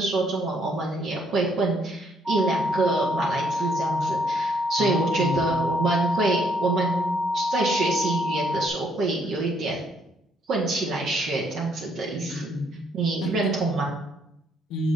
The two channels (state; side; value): normal; both; correlation 0.70